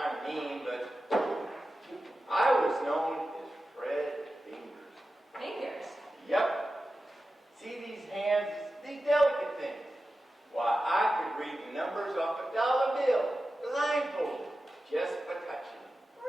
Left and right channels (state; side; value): normal; both; correlation 0.93